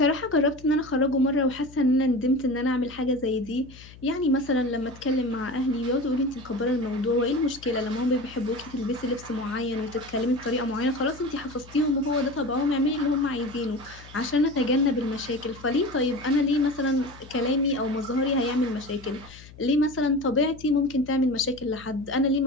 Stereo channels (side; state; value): left; noise; hum, 20 dB below the sound